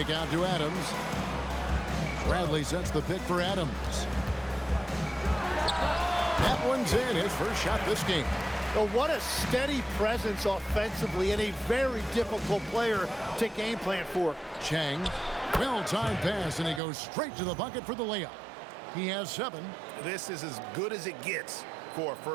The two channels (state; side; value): drops out; left; at 16.8 s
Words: out to Adams. Bradley sets the pick for Adams. That one's in. His first shot this game. Well, what a steady presence offensively and a very difficult player to game plan for. Chang. Well-timed pass, and he goes straight to the bucket for the layup. He has 7. This is as good as it gets for a